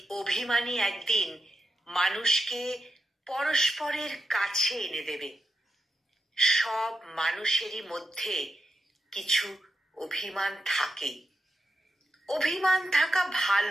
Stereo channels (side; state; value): both; normal; correlation 0.87